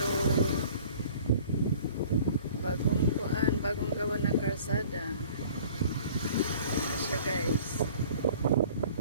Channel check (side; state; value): both; inverted; correlation -0.49